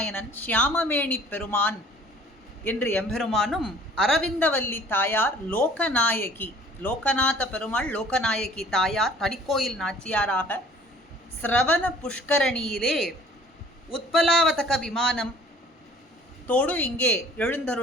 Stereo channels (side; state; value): both; normal; correlation 0.52